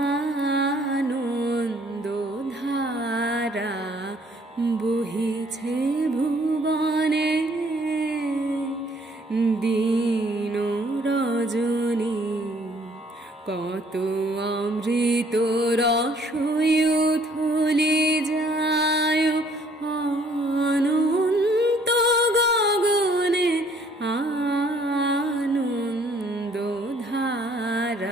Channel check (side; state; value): both; normal; correlation 0.61